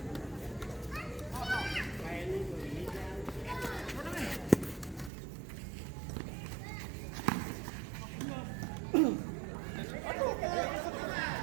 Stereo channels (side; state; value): left; drops out; at 5.1 s